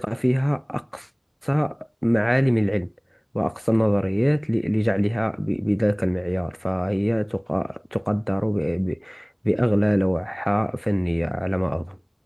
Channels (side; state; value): both; identical; correlation 1.00